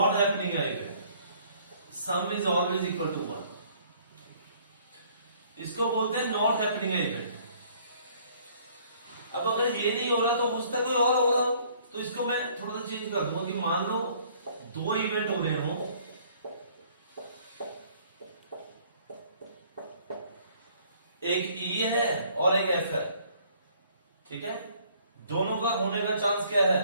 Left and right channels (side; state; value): both; inverted; correlation -0.59